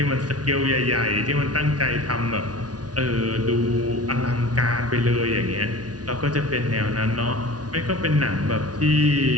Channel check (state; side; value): late; left; 0.69 ms